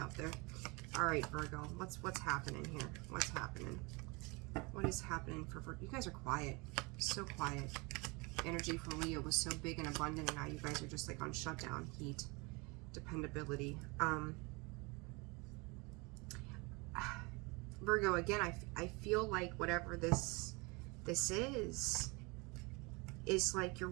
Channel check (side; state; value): left; quieter; 27.7 dB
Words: there. All right, Virgo, what's happening here? What's happening? What is happening for Virgo? You guys are quiet, so quiet. Energy from Leo was so big and abundant, and now you guys are just like on shutdown, heat, dependability. Virgo, again, I feel like whatever this is like you're